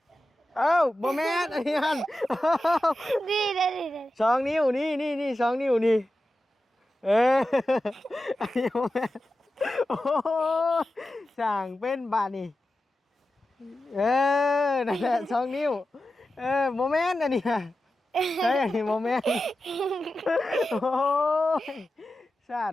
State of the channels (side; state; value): both; normal; correlation 0.92